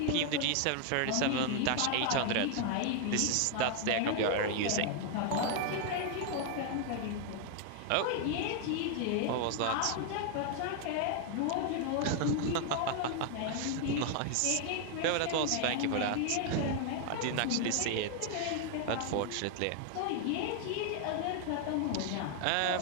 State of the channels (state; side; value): different; both; correlation 0.00